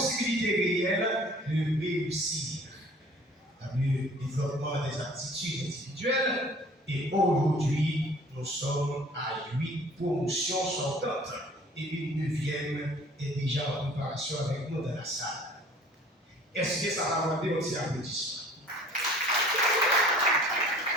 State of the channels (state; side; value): normal; both; correlation 0.50